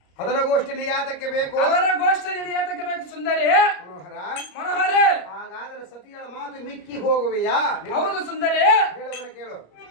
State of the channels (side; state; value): right; late; 34 ms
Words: ಅದರ ಗೋಷ್ಠಿ ಯಾತಕ್ಕೆ ಬೇಕು? ಅದರ ಗೋಷ್ಠಿ ಯಾತಕ್ಕೆ ಬೇಕು ಸುಂದರಿ? ಮನೋಹರ ಹಾಗಾದರೆ ಸತಿಗಳ ಮಾತು ಮಿಕ್ಕಿ ಹೋಗುವೆಯಾ? ಹೌದು ಸುಂದರಿ. ಹೇಳುವನ ಕೇಳು.